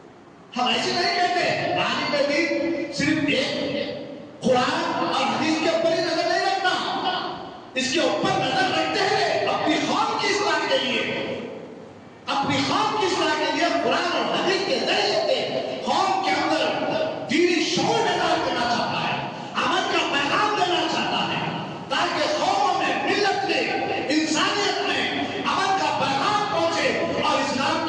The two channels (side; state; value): both; identical; correlation 1.00